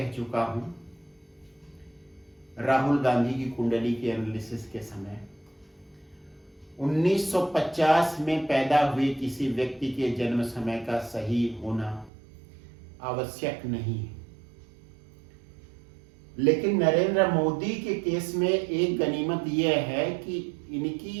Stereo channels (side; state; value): left; drops out; at 12.1 s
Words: चुका हूं, राहुल गांधी की कुंडली के एनालिसिस के समय 1950 में पैदा हुए किसी व्यक्ति के जन्म समय का सही होना आवश्यक नहीं है, लेकिन नरेंद्र मोदी के केस में एक गनीमत यह है कि इनकी